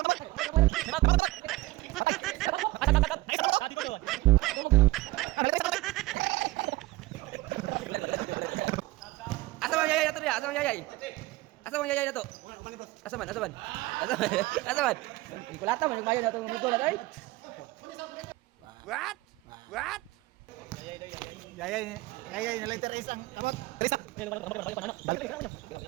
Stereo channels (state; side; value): quieter; left; 19.3 dB